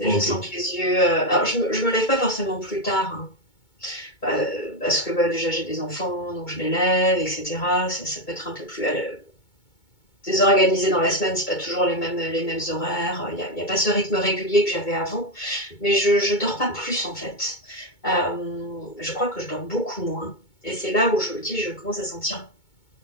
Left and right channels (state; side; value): late; right; 2.2 ms